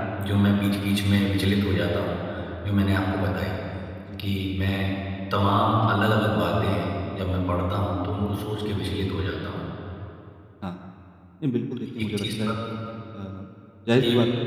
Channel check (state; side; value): identical; both; correlation 1.00